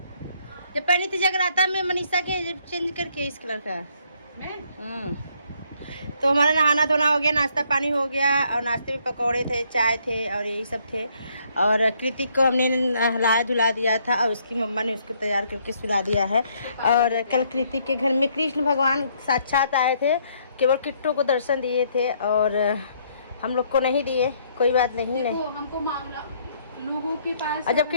जब पहनी थी जगराता में मनीषा के चेंज करके इस कलर का। तो हमारा नहाना धोना हो गया, नाश्ता पानी हो गया। और नाश्ते में पकौड़े थे, चाय थे और यही सब थे। और कृतिक को हमने नहलाया धुला दिया था और उसकी मम्मा ने उसको तैयार करके सुला दिया है। और कल कृतिक के घर में कृष्ण भगवान साक्षात आए थे, केवल किट्टू को दर्शन दिए थे और हम लोग को नहीं दिए। कोई बात नहीं, नहीं हमको मामला लोगों के पास। और जब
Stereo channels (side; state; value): both; inverted; correlation -0.68